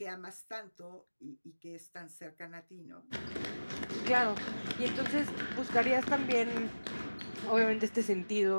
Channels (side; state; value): both; inverted; correlation -1.00